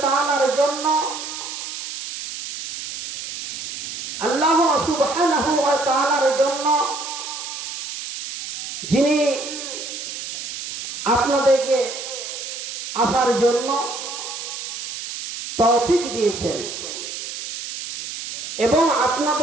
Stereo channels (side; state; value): right; noise; hiss, 8 dB below the sound